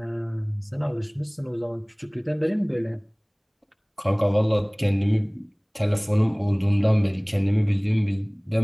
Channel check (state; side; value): identical; both; correlation 1.00